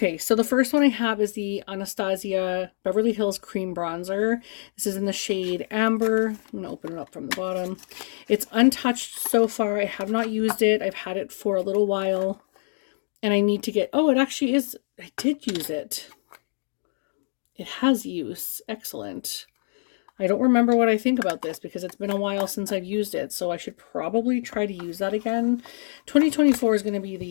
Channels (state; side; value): silent; right; digital silence